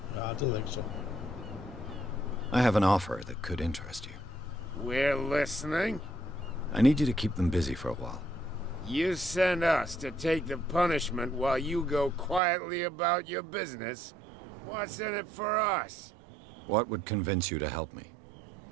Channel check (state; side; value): drops out; left; at 12.4 s